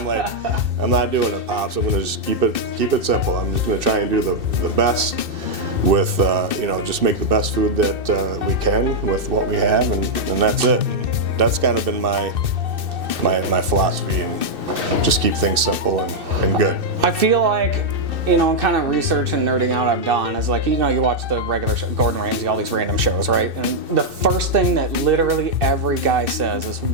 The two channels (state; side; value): late; left; 2.6 ms